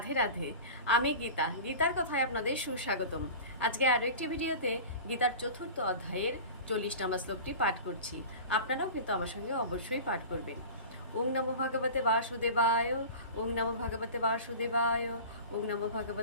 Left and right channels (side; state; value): both; inverted; correlation -0.34